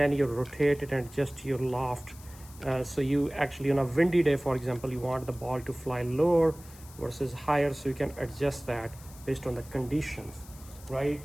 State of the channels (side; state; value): left; noise; hiss, 21 dB below the sound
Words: you rotate it and adjust your loft. So you actually, on a windy day, for example, you want the ball to fly lower versus higher, so you can adjust that based on the conditions, right?